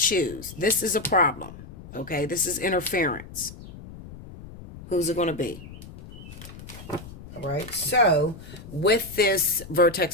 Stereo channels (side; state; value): left; noise; rumble, 15 dB below the sound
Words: This is a problem. Okay, this is interference. Who's it going to be? All right, so with this